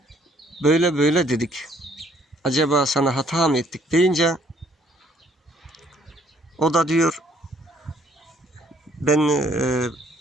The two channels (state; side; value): normal; both; correlation 0.64